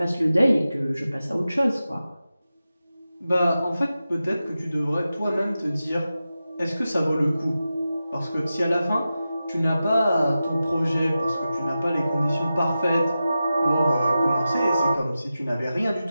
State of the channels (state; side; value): inverted; both; correlation -0.93